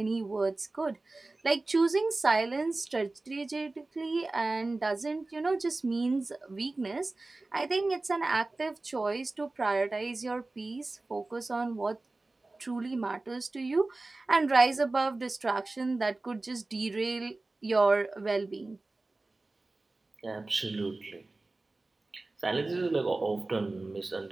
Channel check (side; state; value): left; quieter; 3.2 dB